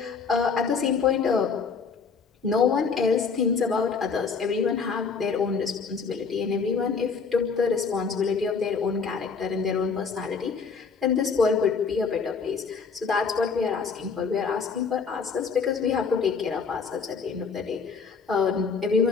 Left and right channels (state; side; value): quieter; right; 5.3 dB